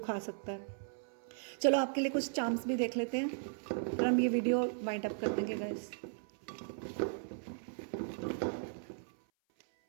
सकता है। चलो आपके लिए कुछ चांस भी देख लेते हैं और हम ये वीडियो वाइंड अप कर देंगे guys.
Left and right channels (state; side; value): silent; left; 53 dB below the other